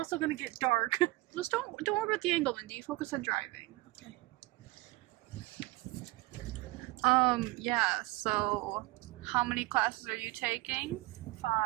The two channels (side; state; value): left; quieter; 20.4 dB